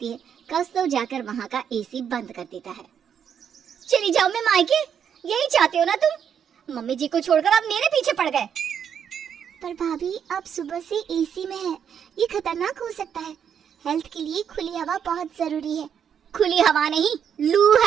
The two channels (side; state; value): left; quieter; 8.1 dB